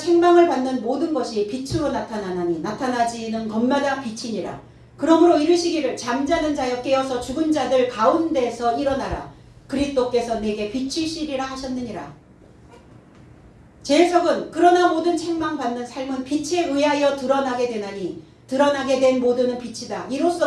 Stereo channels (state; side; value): identical; both; correlation 1.00